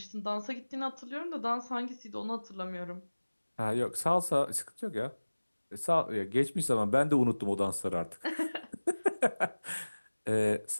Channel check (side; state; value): both; inverted; correlation -1.00